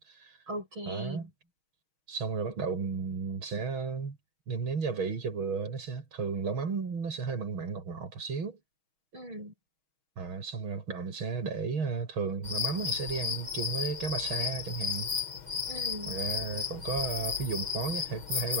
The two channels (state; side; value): late; left; 6.3 ms